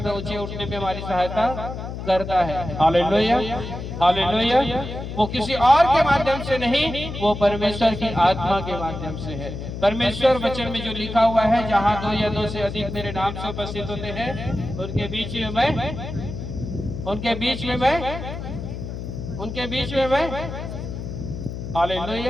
ऊंचे उठने में हमारी सहायता करता है। Hallelujah hallelujah. वो किसी और के माध्यम से नहीं, वो परमेश्वर की आत्मा के माध्यम से है। परमेश्वर वचन में जो लिखा हुआ है, जहाँ 2 या 2 से अधिक मेरे नाम से उपस्थित होते हैं, उनके बीच में मैं, उनके बीच में मैं, उनके बीच में मैं।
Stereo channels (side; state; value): left; noise; hum, 7 dB below the sound